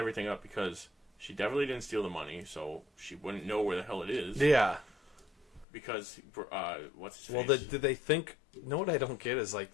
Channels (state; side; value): drops out; right; at 5.7 s